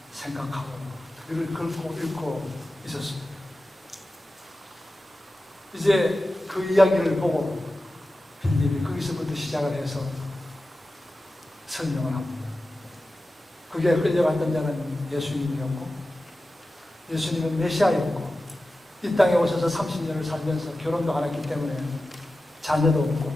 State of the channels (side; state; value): both; normal; correlation 0.94